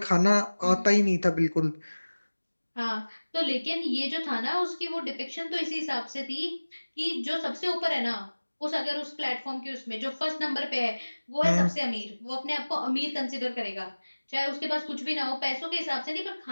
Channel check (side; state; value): both; inverted; correlation -1.00